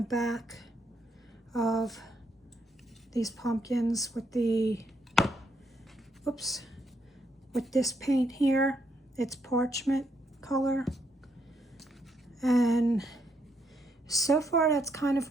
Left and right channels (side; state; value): both; normal; correlation 0.76